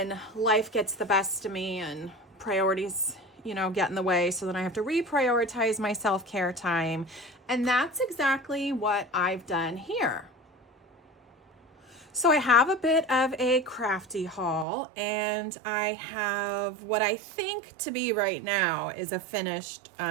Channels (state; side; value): drops out; left; at 14.7 s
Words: life gets the best of me and priorities get in the way, so then I have to reprioritize my self-care time. And that's exactly what I've done here. So I have a bit of a crafty haul, and I have what I think to be right now is a finished